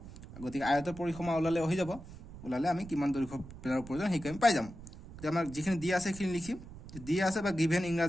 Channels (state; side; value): noise; right; rumble, 15 dB below the sound